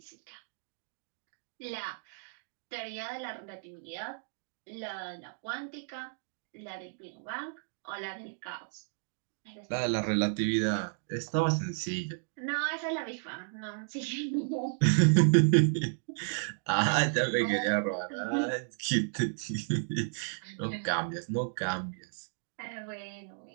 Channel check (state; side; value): silent; left; digital silence